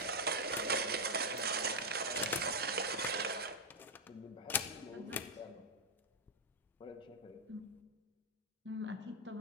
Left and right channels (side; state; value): both; normal; correlation -0.03